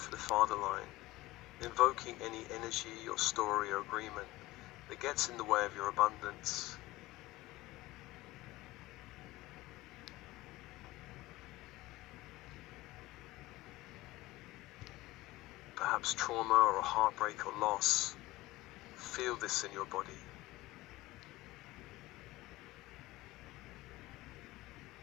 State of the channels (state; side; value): quieter; right; 18.7 dB